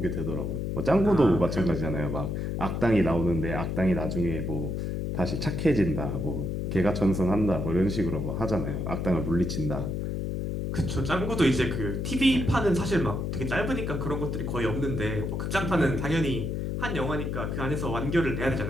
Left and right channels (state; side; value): noise; left; hum, 2 dB below the sound